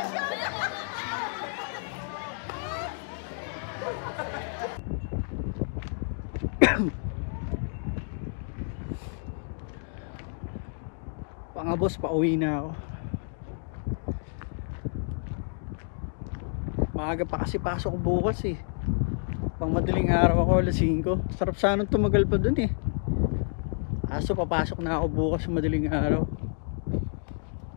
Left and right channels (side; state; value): right; silent; digital silence